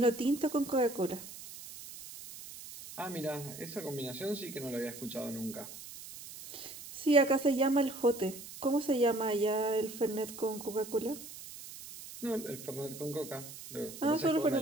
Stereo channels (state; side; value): noise; right; hiss, 13 dB below the sound